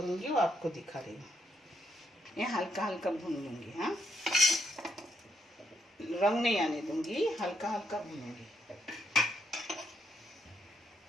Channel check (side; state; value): both; normal; correlation 0.77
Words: वो आपको दिखा रही हूँ। ये हल्का हल्का भून लूंगी। हाँ, रंग नहीं आने दूंगी, हल्का हल्का भूनूंगी।